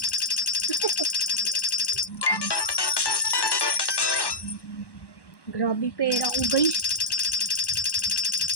Grabe pera ko guys.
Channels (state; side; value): late; right; 1.1 ms